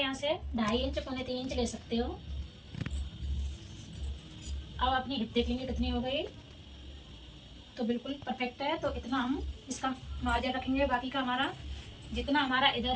से 2.5 इंच, 2.25 इंच ले सकते हो। अब अपनी हिप देख लेंगे कितनी हो गई। तो बिल्कुल परफेक्ट है। तो इतना हम इसका मार्जिन रखेंगे। बाकी का हमारा जितना हमारा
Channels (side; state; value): both; identical; correlation 1.00